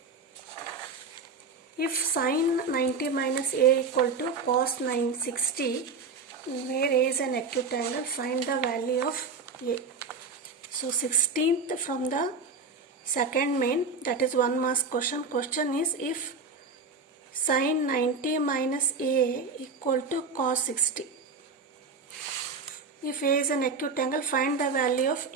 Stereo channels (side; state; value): left; quieter; 4.3 dB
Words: if sine 90 minus a equal to cos 960, where a is an acute angle, find the value of a. So 16th from the second main, that is 1 marks question. Question is, if sine 90 minus a equal to cos 60. If a is an acute angle, find the value of